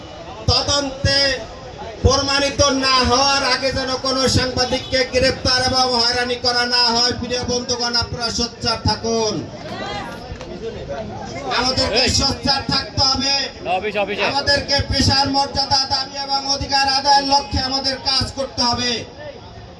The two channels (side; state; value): both; identical; correlation 1.00